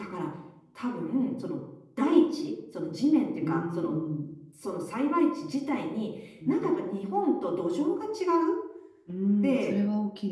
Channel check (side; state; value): both; identical; correlation 1.00